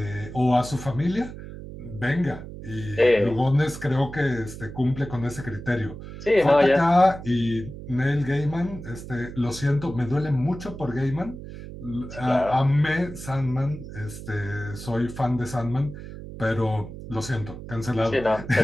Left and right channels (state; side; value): noise; right; hum, 12 dB below the sound